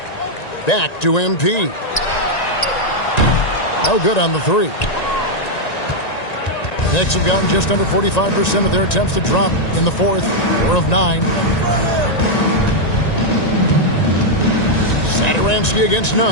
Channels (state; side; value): late; right; 1.9 ms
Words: Back to MP. No good on the 3. The Knicks have gotten just under 45% of their attempts to drop in the fourth. 4 of 9. Satoransky against